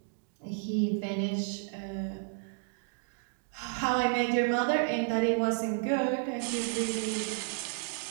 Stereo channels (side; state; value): left; silent; 56 dB below the other